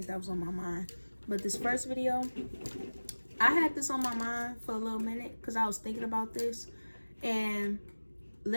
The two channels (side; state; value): both; inverted; correlation -1.00